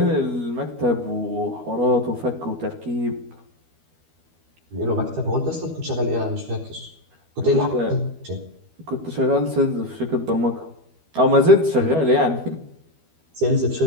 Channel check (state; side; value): late; left; 12 ms